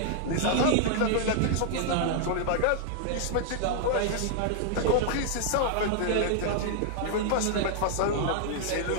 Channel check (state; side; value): different; both; correlation -0.01